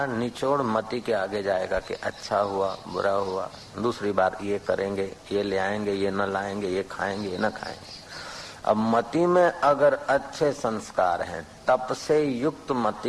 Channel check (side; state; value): both; identical; correlation 1.00